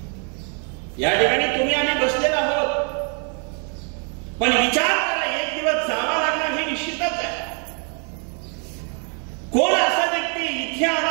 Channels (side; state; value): left; quieter; 39.9 dB